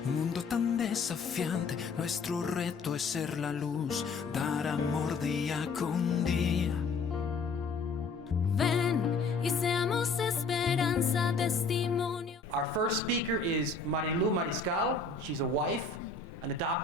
Un mundo tan desafiante, nuestro reto es ser la luz, dar amor día con día. Ven y seamos esperanza, testimonio. Our first speaker is Marilu Mariscal. She's a wife, an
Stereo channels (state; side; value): quieter; right; 4.2 dB